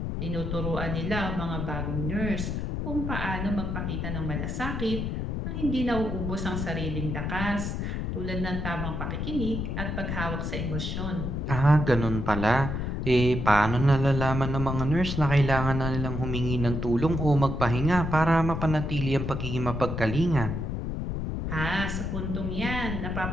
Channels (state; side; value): noise; left; rumble, 3 dB below the sound